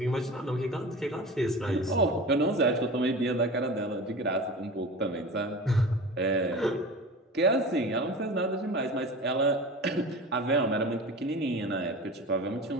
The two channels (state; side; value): normal; both; correlation 0.34